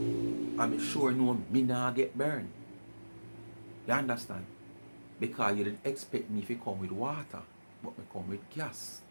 I'm sure no me not get burned. You understand? Because you didn't expect me to come with water, but me come with gas.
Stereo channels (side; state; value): both; inverted; correlation -1.00